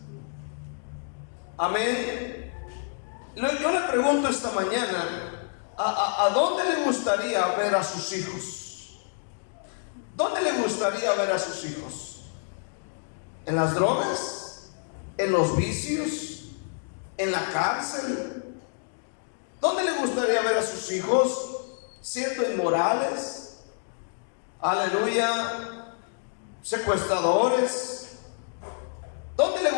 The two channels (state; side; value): silent; right; digital silence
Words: Amén. Yo le pregunto esta mañana: ¿a dónde le gustaría ver a sus hijos? ¿Dónde le gustaría ver a sus hijos? ¿En las drogas? ¿En los vicios? ¿En la cárcel? ¿Dónde le gustaría ver a sus hijos? ¿Siendo inmorales? Aleluya. ¿Secuestradores? ¿Dónde le